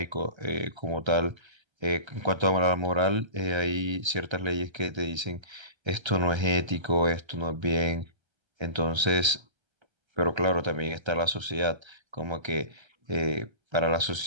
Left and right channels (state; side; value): late; left; 1.3 ms